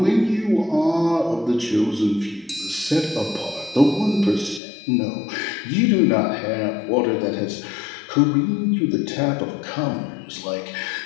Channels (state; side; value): drops out; right; at 4.6 s